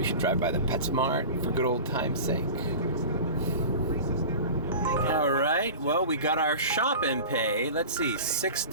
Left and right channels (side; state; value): both; inverted; correlation -0.35